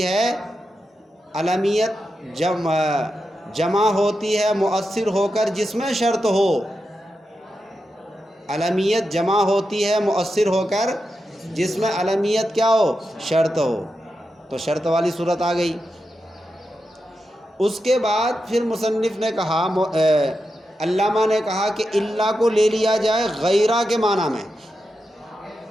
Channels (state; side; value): normal; both; correlation 0.88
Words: ہے، علمیت جمع ہوتی ہے مؤثر ہو کر جس میں شرط ہو، علمیت جمع ہوتی ہے مؤثر ہو کر جس میں علمیت کیا ہو، شرط ہو، تو شرط والی صورت آ گئی۔ اس کے بعد پھر مصنف نے کہا، علامہ نے کہا کہ اللہ کو لے لیا جائے غیرہ کے معنی میں۔